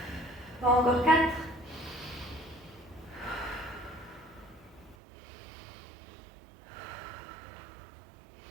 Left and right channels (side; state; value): left; drops out; at 5.0 s